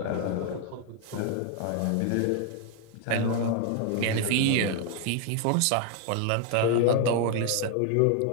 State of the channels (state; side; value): different; both; correlation 0.01